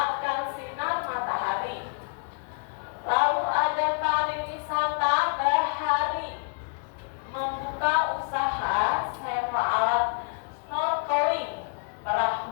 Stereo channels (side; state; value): right; quieter; 38.3 dB